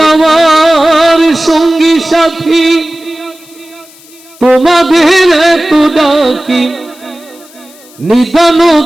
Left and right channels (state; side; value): noise; left; hiss, 25 dB below the sound